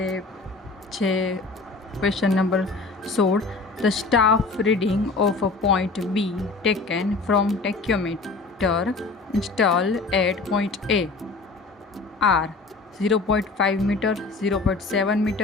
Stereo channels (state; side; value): quieter; right; 3.8 dB